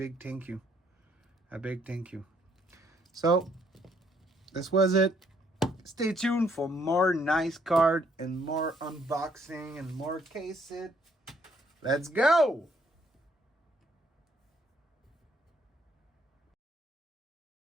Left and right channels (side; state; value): both; normal; correlation 0.67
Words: thank you, So this was it. Stay tuned for more nice card and more unboxing and more case it. Let's go.